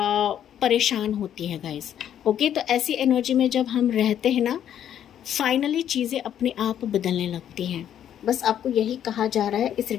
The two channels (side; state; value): right; quieter; 10.1 dB